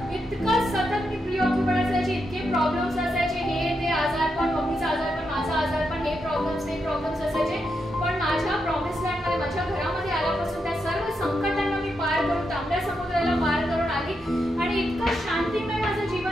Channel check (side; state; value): both; normal; correlation 0.83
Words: इतकं सतत मी प्रिऑक्युपाइड असायची, इतके प्रॉब्लेम्स असायचे, हे ते आजारपण, मम्मीचा आजारपण, माझा आजारपण, हे प्रॉब्लेम्स असायचे. पण माझ्या प्रॉमिस लँडमध्ये, माझ्या घरामध्ये आल्यापासून त्या सर्व संकटांना मी पार करून, तांबड्या समुद्राला पार करून आली आणि इतकं शांतिमय माझं